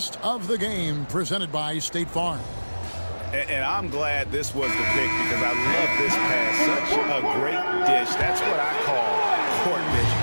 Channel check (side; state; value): both; inverted; correlation -1.00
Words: of the game presented by State Farm. And I'm glad this was the pick because I love this pass. Such a great dish. That's what I call court vision.